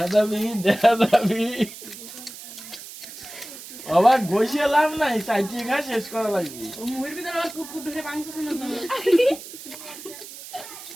যাবি, দেখা যাবি, আবার বসে লাভ নাই, চাইতে খা শেষ করা লাগবে।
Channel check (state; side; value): noise; right; hiss, 14 dB below the sound